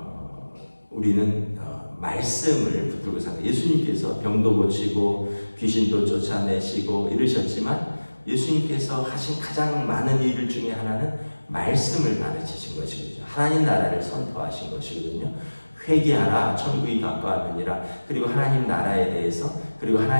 우리는 말씀을 붙들고 삽니다. 예수님께서 병도 고치고 귀신도 쫓아내시고 이러셨지만 예수님께서 하신 가장 많은 일 중에 하나는 말씀을 가르치신 것이거든요. 하나님 나라를 선포하신 것이거든요. 회개하라 천국이 가까웠느니라. 그리고 하나님 나라에 대해서 그리고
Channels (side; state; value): both; inverted; correlation -1.00